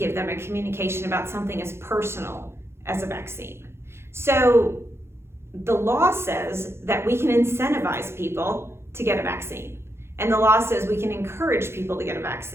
them a communication about something as personal as a vaccine. So the law says that we can incentivize people to get a vaccine. And the law says we can encourage people to get a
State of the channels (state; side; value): late; left; 0.12 ms